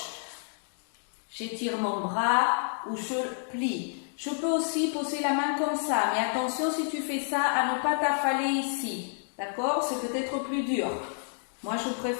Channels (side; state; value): right; silent; digital silence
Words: j'étire mon bras ou je plie. Je peux aussi poser la main comme ça, mais attention si tu fais ça à ne pas t'affaler ici. D'accord? C'est peut-être plus dur. Moi, je